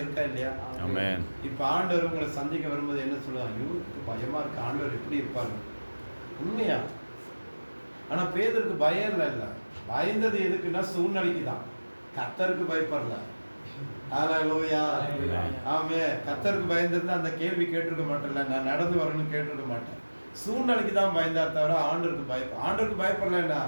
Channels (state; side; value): inverted; both; correlation -1.00